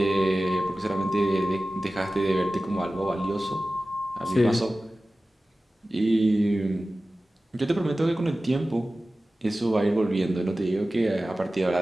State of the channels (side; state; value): both; normal; correlation 0.96